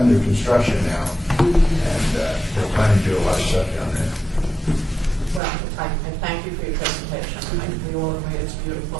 construction now, and they're planning to do a lot of stuff down there. Well, I thank you for your presentation. I think we all agree it's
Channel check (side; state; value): left; drops out; at 5.4 s